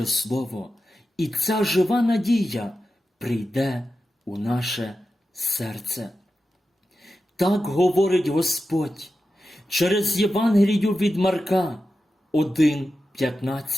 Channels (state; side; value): normal; both; correlation 0.91